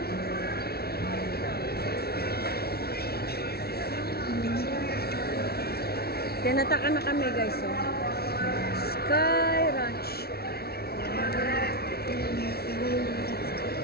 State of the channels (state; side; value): late; right; 0.45 ms